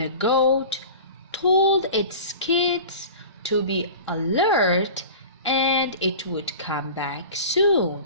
goat told its kids to be alert and it would come back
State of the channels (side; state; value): both; inverted; correlation -0.37